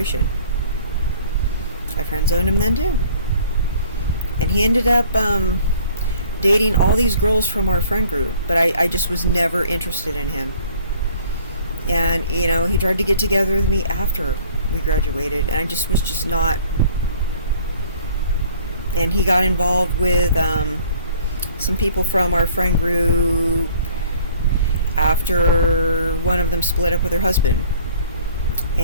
I friend zoned him then too. And he ended up dating all these girls from our friend group, but I just was never interested in him. And, he tried to get together with me after we graduated, and I just was just not. And he got involved with some people from our friend group after one of them split up with her husband.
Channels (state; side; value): inverted; both; correlation -0.55